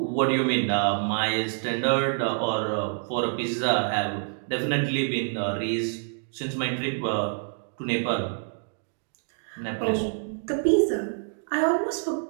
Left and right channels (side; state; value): left; silent; 60 dB below the other